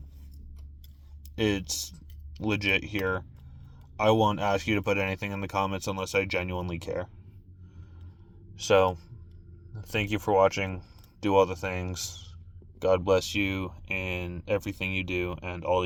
it's legit here. I won't ask you to put anything in the comments unless I genuinely care. So, thank you for watching. Do all the things. God bless you in everything you do and all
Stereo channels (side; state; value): both; identical; correlation 1.00